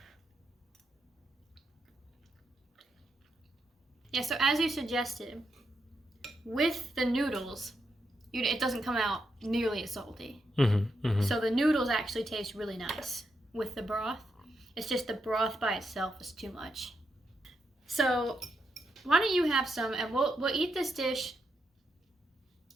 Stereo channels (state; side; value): normal; both; correlation 0.82